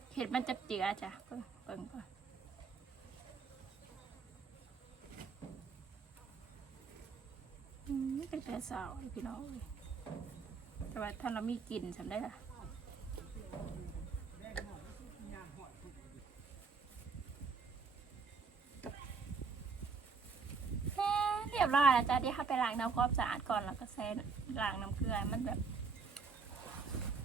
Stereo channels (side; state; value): left; quieter; 4.9 dB